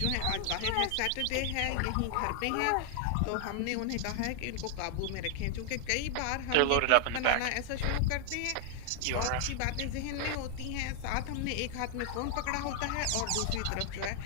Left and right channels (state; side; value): different; both; correlation 0.00